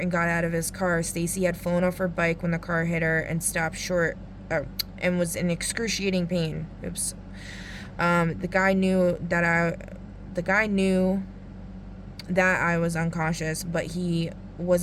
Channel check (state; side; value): identical; both; correlation 1.00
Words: and got out of his car. Stacy had flown off her bike when the car hit her and stopped short and was in excruciating pain. Oops. The guy knew that I was unconscious, but he